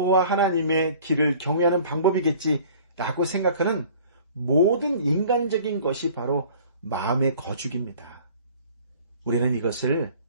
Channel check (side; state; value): both; inverted; correlation -0.49